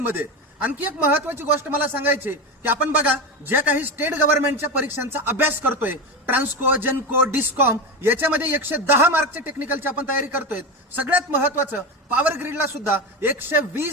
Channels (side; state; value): both; normal; correlation 0.19